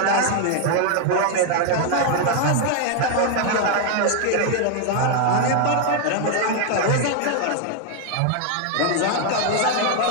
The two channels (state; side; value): different; both; correlation 0.00